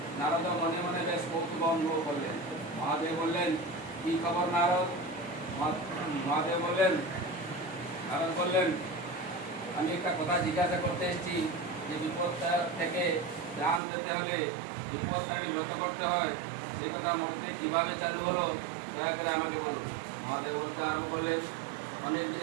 নারদ মনে মনে বেশ কৌতুক অনুভব করলেন। মহাদেব বললেন, কি খবর নারদ? মহাদেব বললেন, নারদ বললেন, আমি একটা কথা জিজ্ঞাসা করতে এসেছি যে বিপদটা থেকে ত্রাণ দিতে হলে বিপদটাকে ব্রত করতে হয়, সেই কথা মধ্যে কীভাবে চালু হলো দয়া করে আমাকে বলুন। মহাদেব বলতে আরম্ভ করলেন, অনেকদিন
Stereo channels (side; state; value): left; drops out; at 13.8 s